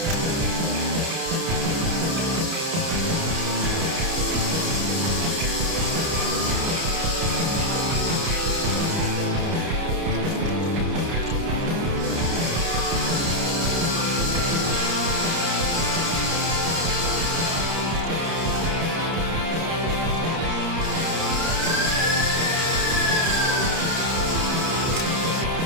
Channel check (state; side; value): late; left; 30 ms